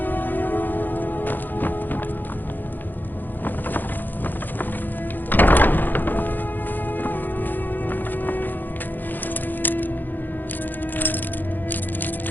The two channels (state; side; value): late; right; 0.087 ms